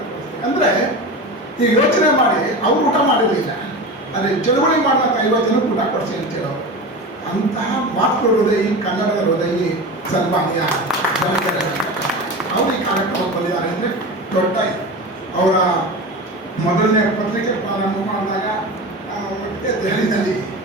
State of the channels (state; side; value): normal; both; correlation 0.28